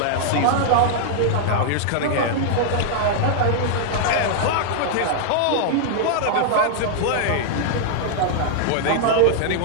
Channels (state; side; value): different; both; correlation -0.01